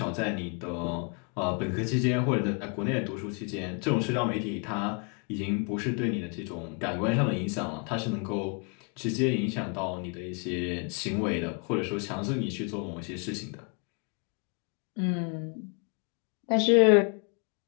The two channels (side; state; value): right; quieter; 37.7 dB